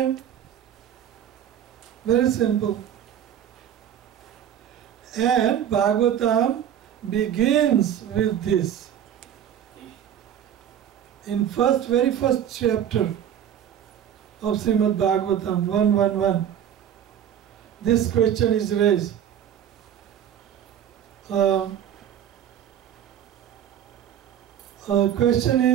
Very simple. And Bhagavatam begins with this. In very first chapter of Srimad Bhagavatam 1:1:1, this question is raised. Question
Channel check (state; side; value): quieter; left; 9.7 dB